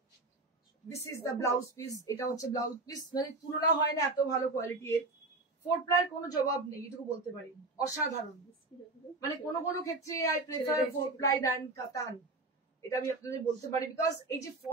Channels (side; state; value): left; quieter; 3.1 dB